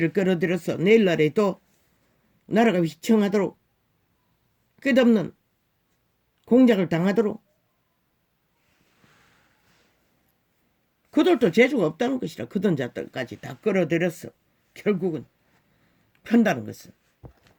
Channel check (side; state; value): both; identical; correlation 1.00